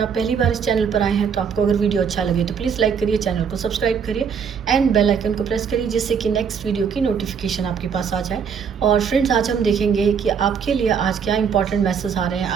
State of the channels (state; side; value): quieter; left; 6.8 dB